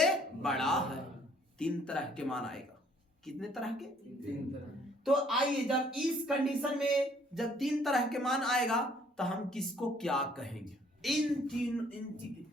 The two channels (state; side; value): normal; both; correlation 0.62